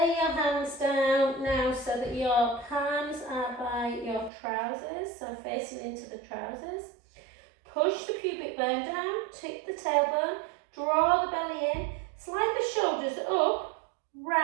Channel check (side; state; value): left; drops out; at 4.3 s